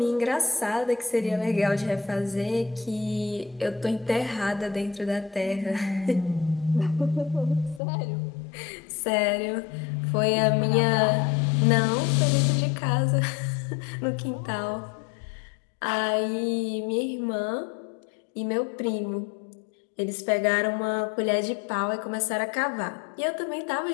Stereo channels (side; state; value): right; drops out; at 7.8 s